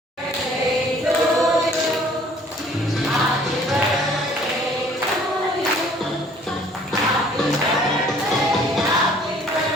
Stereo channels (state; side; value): normal; both; correlation 0.56